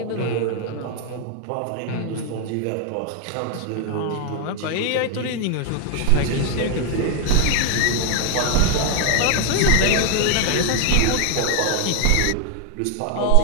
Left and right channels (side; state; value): both; different; correlation 0.00